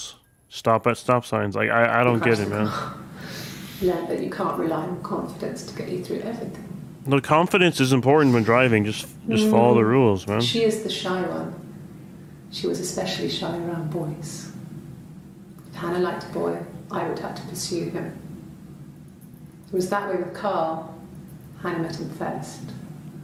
Stop at stop signs. Like, I don't get it, man. Learned that you can't rely on confidence to get you through everything. No, confidence is important when driving. Just follow the rules, man. She is the shy one. She was especially shy around boys. If Hannah liked a boy, I would have to pursue him. It was that way with Carl. Hannah met him first.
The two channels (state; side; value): identical; both; correlation 1.00